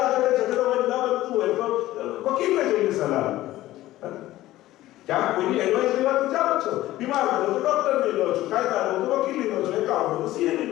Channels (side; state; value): right; quieter; 15.7 dB